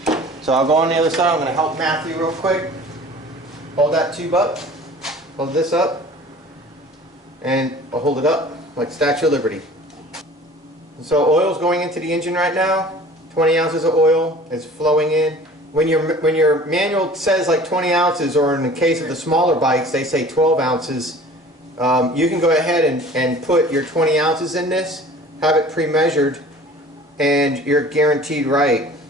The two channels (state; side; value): normal; both; correlation 0.46